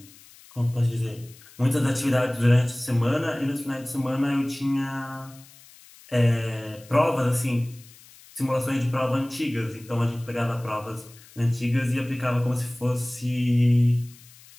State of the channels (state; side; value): noise; left; hiss, 23 dB below the sound